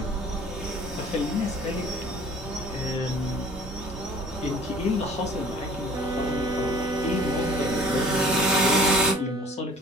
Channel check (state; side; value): normal; both; correlation 0.50